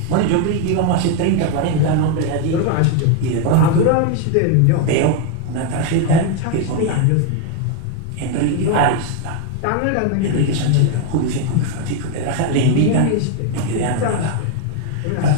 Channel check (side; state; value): both; different; correlation 0.01